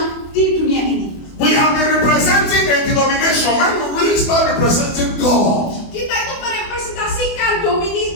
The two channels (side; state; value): right; late; 24 ms